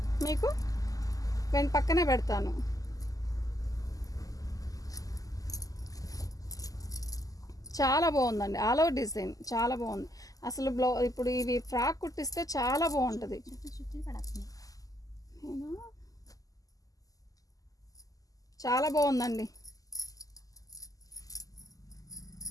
మీకు పక్కనే పెడతాను. చాలా బాగుందండి, ఆల్ ఓవర్ డిజైన్ చాలా బాగుంది అసలు. ఇప్పుడు ఇవి ఫ్రాక్ కుట్టిస్తే చాలా బాగుంటుంది. చాలా బాగుందండి.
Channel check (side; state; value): right; late; 0.17 ms